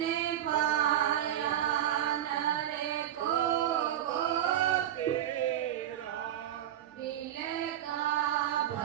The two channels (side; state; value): left; quieter; 11.5 dB